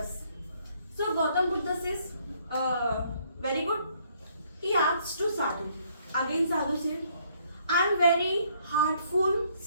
So Gautam Buddha says, very good. He asked to Sadhu. Again Sadhu said, I am very heartful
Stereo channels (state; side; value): inverted; both; correlation -0.67